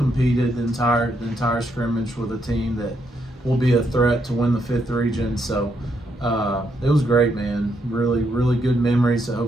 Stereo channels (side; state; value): both; normal; correlation 0.77